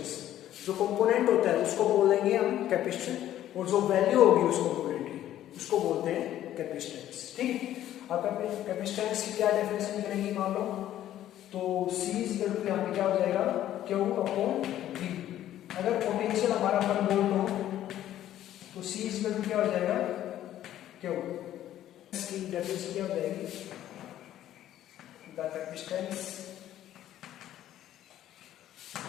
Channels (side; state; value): right; quieter; 12.4 dB